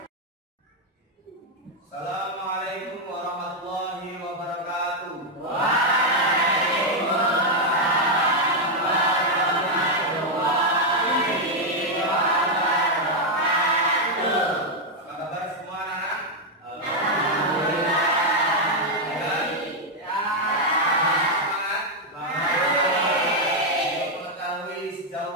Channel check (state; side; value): normal; both; correlation 0.01